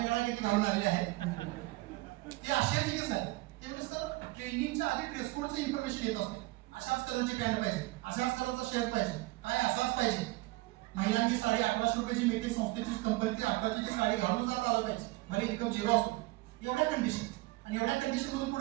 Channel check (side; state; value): left; quieter; 21.0 dB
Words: किती घालून आलेले आहेत ते आश्चर्यचकित आहे. ते म्हणजे सर ट्रेनिंगच्या आधी ड्रेस कोडचं इन्फॉर्मेशन येत असते. अशाच कलरची पॅन्ट पाहिजे, अशाच कलरचा शर्ट पाहिजे, काय असाच पाहिजे. महिलांची साडी 1800 रुपयाची मिळते, संस्थेची कंपनीची 1800ची साडी घालून जात आलं पाहिजे, भले इन्कम झिरो असतो. एवढ्या कंडिशन आणि एवढ्या कंडिशन मधून